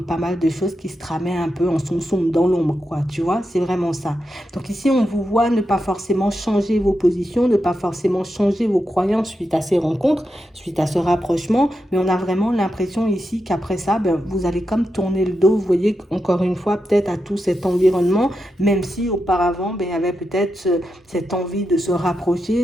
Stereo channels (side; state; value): both; normal; correlation 0.87